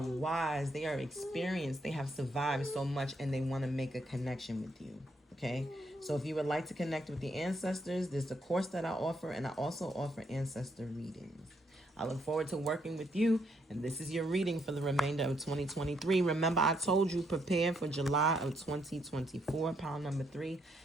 they are experienced, they have survived so much, and they want to make a connection with you, okay? So if you would like to connect with the ancestors, there's a course that I offer, and I also offer ancestor readings. I look forward to working with you, and this is your reading for the remainder of 2023. Remember, I told you, prepare for July of 2024, pile number 3.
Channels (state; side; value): normal; both; correlation 0.75